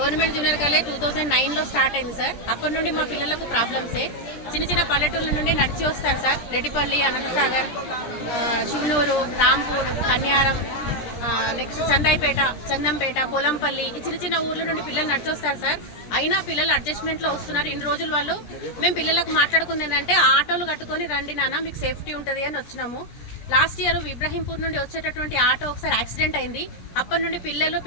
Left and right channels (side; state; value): right; late; 17 ms